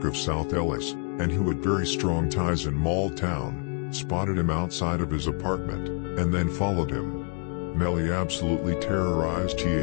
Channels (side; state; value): right; quieter; 40.0 dB